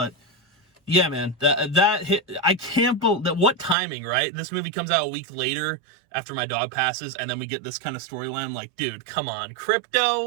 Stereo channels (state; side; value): drops out; left; at 3.8 s